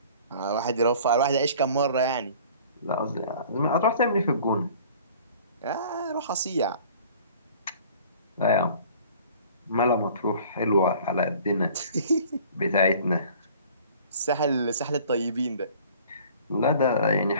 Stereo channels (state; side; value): inverted; both; correlation -0.49